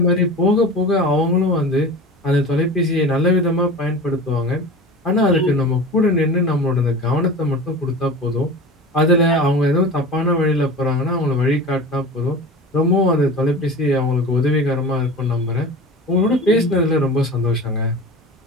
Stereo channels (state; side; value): normal; both; correlation 0.34